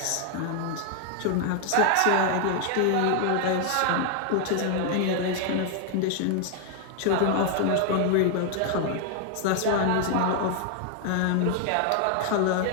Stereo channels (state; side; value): different; both; correlation 0.00